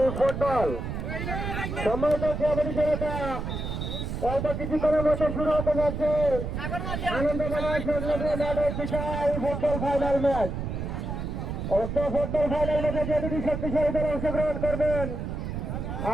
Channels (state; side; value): noise; right; rumble, 4 dB below the sound